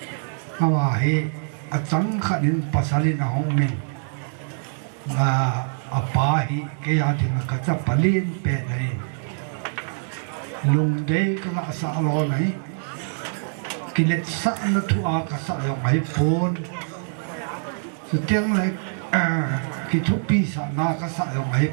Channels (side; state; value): left; silent; digital silence